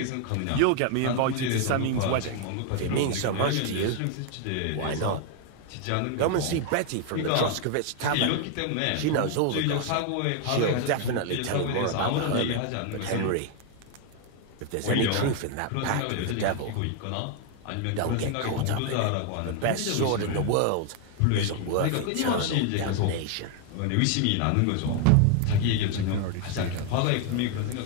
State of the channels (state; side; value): different; both; correlation 0.00